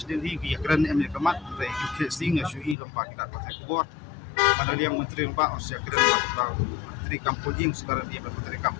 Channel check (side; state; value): right; drops out; at 2.8 s